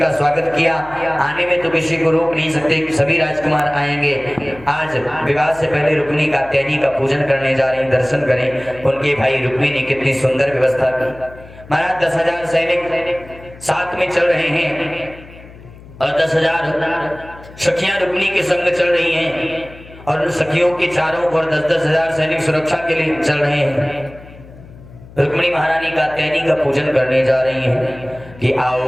का स्वागत किया। आने में तो किसी को रोक नहीं सकते कि सभी राजकुमार आएंगे। आज विवाह से पहले रुक्मिणी कात्यायनी का पूजन करने जा रहे हैं, दर्शन करें। उनके भाई रुक्मिणी ने कितनी सुंदर व्यवस्था की। महाराज 10,000 सैनिक साथ में चल रहे हैं और 10,000 सखियां रुक्मिणी के संग चल रही हैं और उन सखियों के चारों ओर 10,000 सैनिक सुरक्षा के लिए चल रहे हैं। रुक्मिणी महारानी कात्यायनी का पूजन करने जा रही हैं कि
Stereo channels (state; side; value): noise; left; hum, 20 dB below the sound